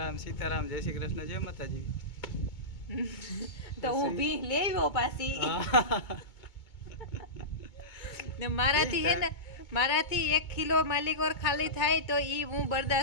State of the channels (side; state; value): right; late; 2.2 ms